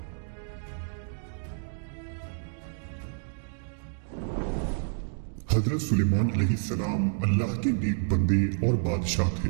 हजरत सुलेमान अलैहिस्सलाम अल्लाह के नेक बंदे और बादशाह थे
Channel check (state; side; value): silent; left; digital silence